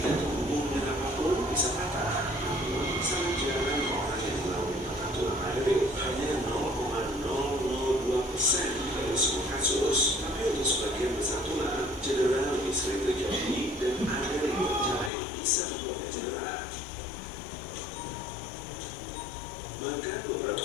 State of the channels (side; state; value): right; drops out; at 15.1 s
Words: terhubung dengan apapun bisa patah. Sangat jarang orang yang mengalami patah tulang hyoid, hanya 0,002% dari semua kasus. Tapi untuk sebagian besar tulang, cedera lebih sering terjadi dan ada riwayat jari yang bisa membuatnya cedera. Bahkan beberapa